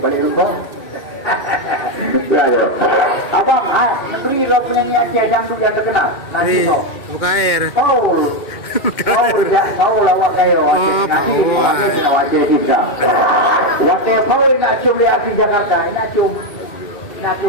balik rumah. Ya, abang, negeri lo penyanyi Aceh dangdut yang terkenal. Nanti kau. Buka air. Kau lawak kayo. Nanti kau Aceh juga. Waktu kau nak cium lihat di Jakarta, nak cium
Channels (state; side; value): late; right; 2.1 ms